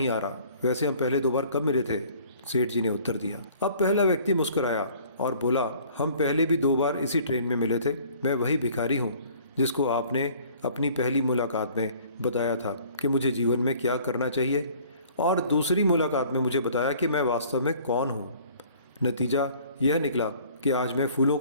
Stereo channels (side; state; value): both; inverted; correlation -0.53